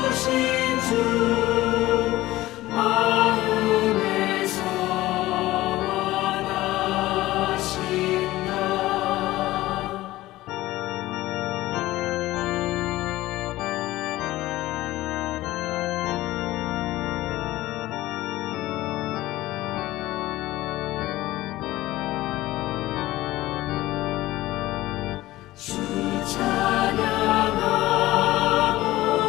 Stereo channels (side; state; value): right; quieter; 17.0 dB